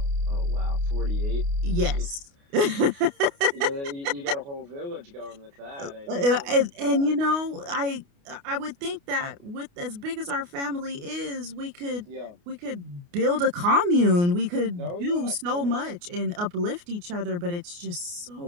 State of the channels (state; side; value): late; left; 29 ms